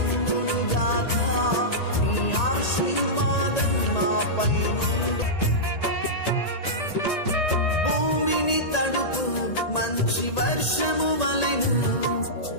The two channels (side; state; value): right; late; 1.8 ms